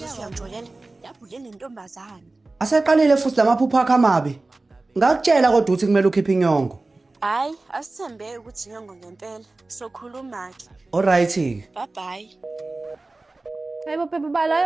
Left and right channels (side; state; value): left; quieter; 3.2 dB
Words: siyamjolela yabhule nentombazana. Aseqalile futhi lamaphupho akho amabi. Ngakutshela kodwa ukuthi kumele ukhiphe inyongo. Hayi asithembe ukuthi inyongo ngempela sokhuluma ke. Alright. Bye bye. Hayibo babe bala